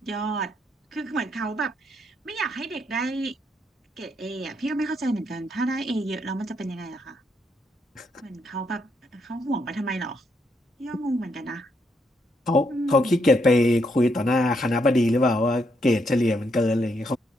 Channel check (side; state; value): both; normal; correlation 0.76